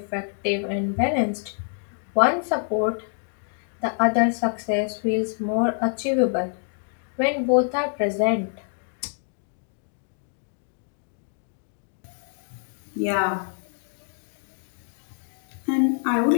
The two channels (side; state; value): right; silent; 61 dB below the other